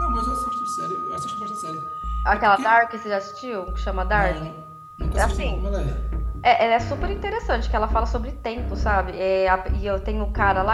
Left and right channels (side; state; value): both; identical; correlation 1.00